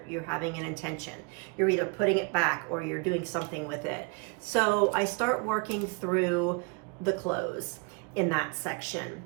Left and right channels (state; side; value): quieter; left; 31.8 dB